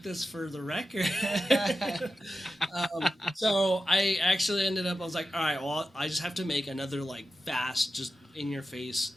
this for the record. So I actually ended up, I was like, all right, well, I just have to make another like fast, just in your face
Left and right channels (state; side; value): normal; both; correlation 0.90